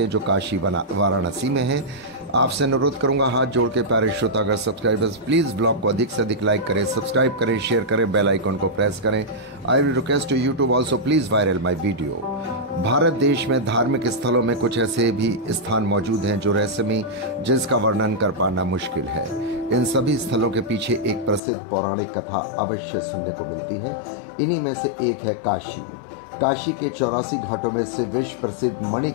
हैं, जो काशी वाराणसी में है। आपसे अनुरोध करूंगा हाथ जोड़ के प्यारे श्रोतागण सब्सक्राइबर्स, प्लीज ब्लॉग को अधिक से अधिक लाइक करें, सब्सक्राइब करें, शेयर करें, बेल आइकन को प्रेस करें। I will request to YouTube also please viral my video. Bharat देश में धार्मिक स्थलों में कुछ ऐसे भी स्थान मौजूद हैं जो रहस्यमयी, जिसका वर्णन कर पाना मुश्किल है। इन सभी स्थलों के पीछे एक प्रसिद्ध पौराणिक कथा अवश्य सुनने को मिलती है। इन्हीं में से एक है काशी। काशी के 84 घाटों में से विश्व प्रसिद्ध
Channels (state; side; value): drops out; right; at 21.4 s